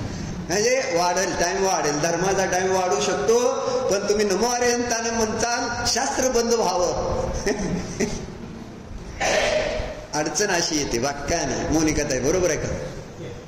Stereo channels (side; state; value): both; identical; correlation 1.00